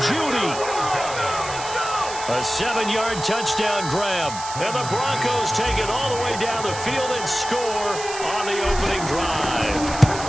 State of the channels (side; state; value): right; noise; hiss, 10 dB below the sound